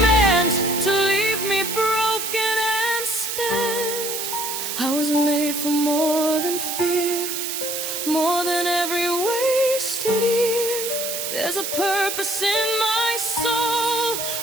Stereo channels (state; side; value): noise; right; hiss, 3 dB below the sound